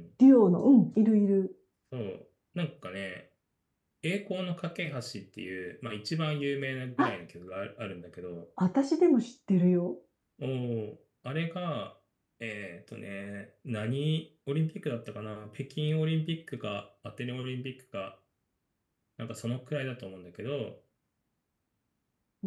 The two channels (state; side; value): identical; both; correlation 1.00